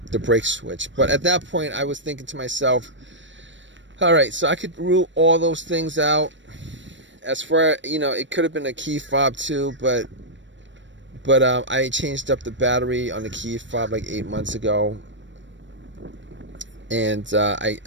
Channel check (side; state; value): left; late; 0.54 ms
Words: brake switch. But at that point, I was thinking to myself, all right, so I could rule all those things out. As far, it could have been a key fob too, but I changed up the battery on the key fob like 8 months ago, and